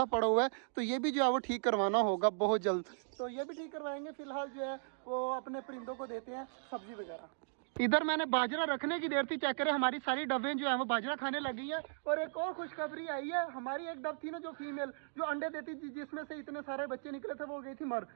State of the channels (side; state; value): left; silent; digital silence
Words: पड़ा हुआ है, तो ये भी जो है वो ठीक करवाना होगा बहुत जल्द। तो ये भी ठीक करवाएंगे। फिलहाल जो है वो अपने परिंदों को देते हैं सब्जी वगैरह। इधर मैंने बाजरा रखने की देर थी, चेक करें हमारी सारी डबें जो है वो बाजरा खाने लगी है। और एक और खुशखबरी आई है, हमारी एक डब थी ना जो फीमेल जो अंडे देती थी, जिसमें से इतने सारे बच्चे निकले थे, वो गई थी मर।